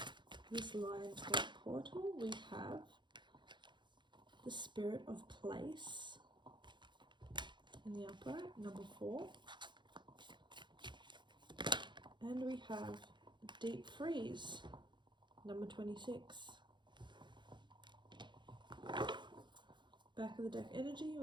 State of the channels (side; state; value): left; late; 0.22 ms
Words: This Lionsgate portal, we have the Spirit of Place in the upright, number 4. And we have Deep Freeze, number 26. Back of the deck energy,